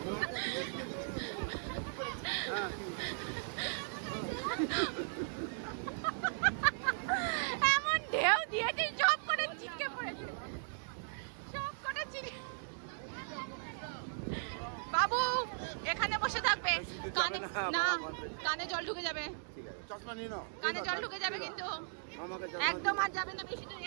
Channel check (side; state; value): left; silent; digital silence